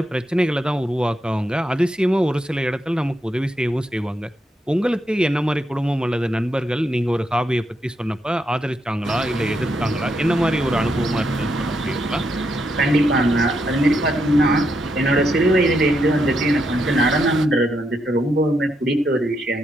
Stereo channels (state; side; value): normal; both; correlation 0.80